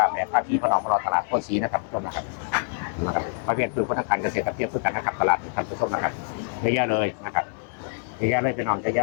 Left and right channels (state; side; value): silent; right; digital silence